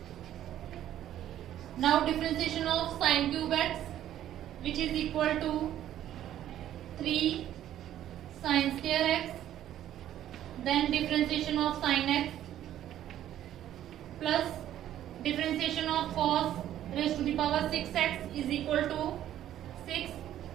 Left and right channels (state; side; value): quieter; left; 11.9 dB